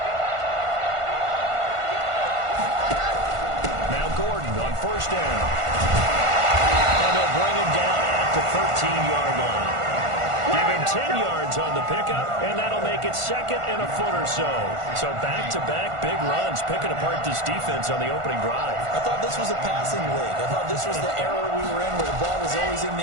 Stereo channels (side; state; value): left; late; 1.5 ms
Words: First down. And they'll bring him down at the 13-yard line. Give him 10 yards on the pickup, and that'll make it second and a foot or so. So back-to-back big runs, picking apart this defense on the opening drive. I thought this was a passing league. I thought this was the era we were in where the ball was always in